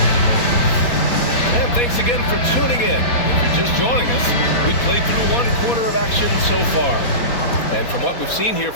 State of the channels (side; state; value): right; late; 4.2 ms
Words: And thanks again for tuning in. If you're just joining us, we've played through 1 quarter of action so far. And from what we've seen here